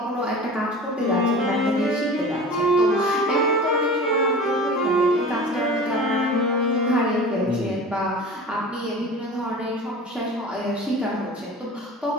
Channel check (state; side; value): normal; both; correlation 0.37